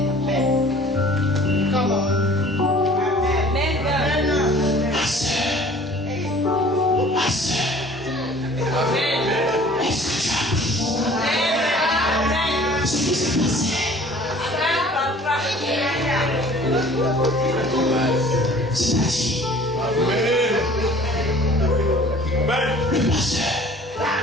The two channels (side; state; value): both; normal; correlation 0.49